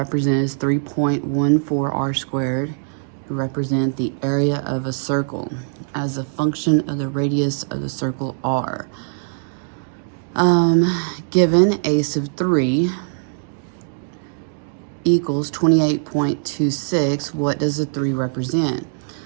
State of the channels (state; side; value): silent; left; digital silence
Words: as 3.14 r squared, represent the area of a circle as a function of the radius of the circle r. Given a sub 3 equals 28.26, what does the 3 represent?